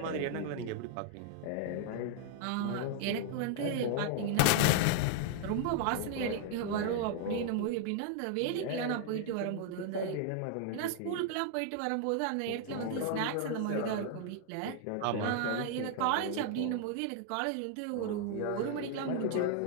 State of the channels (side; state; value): both; different; correlation 0.00